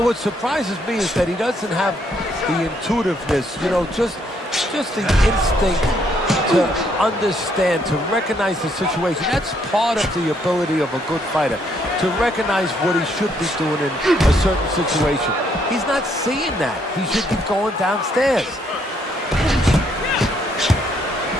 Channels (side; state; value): both; normal; correlation 0.71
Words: what surprises me is that he doesn't have the intuitiveness, you know, just the instinct to understand, to recognize the situation. That's part of the ability of a good fighter, to recognize what he should be doing in a certain situation. He's not seeing that. He should be going downstairs.